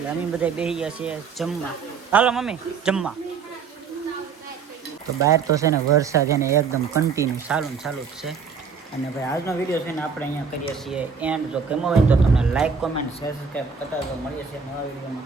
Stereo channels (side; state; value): left; quieter; 5.9 dB